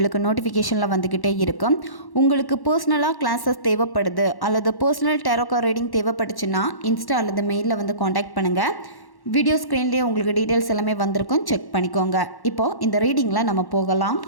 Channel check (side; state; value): right; late; 1.1 ms